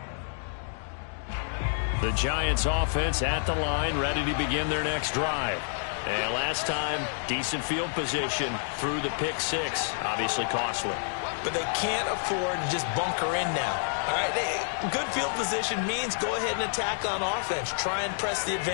The Giants offense at the line, ready to begin their next drive. And last time, decent field position through the pick 6. Obviously costly. But they can't afford to just bunker in now. All right, good field position means go ahead and attack on offense. Try and press the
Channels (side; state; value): right; silent; digital silence